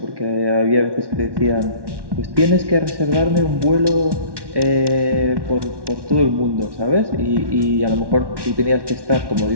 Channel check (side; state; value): left; late; 1.1 ms